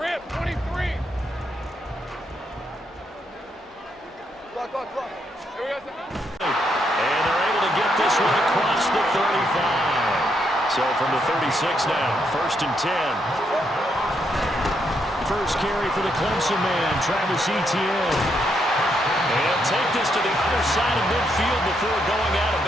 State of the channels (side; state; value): both; normal; correlation 0.77